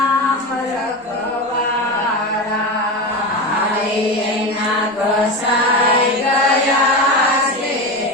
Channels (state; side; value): normal; both; correlation 0.21